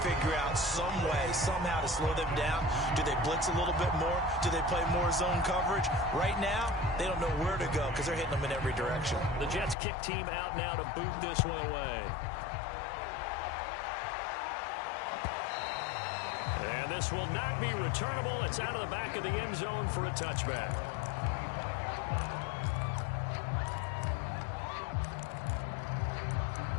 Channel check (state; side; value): drops out; right; at 9.8 s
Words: figure out some way, somehow to slow them down. Do they blitz a little bit more? Do they play more zone coverage? Right now, they don't know where to go because they're hitting them in every direction. The Jets kick team out now to boot this one away. And this will not be returnable. It's out of the back of the end zone for a touchback.